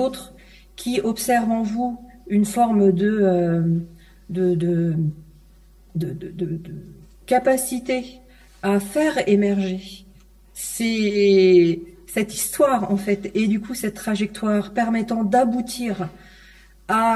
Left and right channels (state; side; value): identical; both; correlation 1.00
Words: qui observent en vous une forme de capacité à faire émerger cette histoire en fait, et du coup cette trajectoire permettant d'aboutir